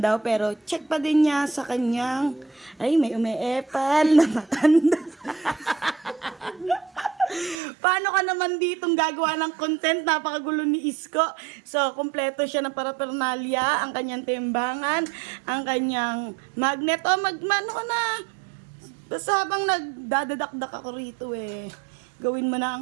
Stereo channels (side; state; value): left; drops out; at 7.6 s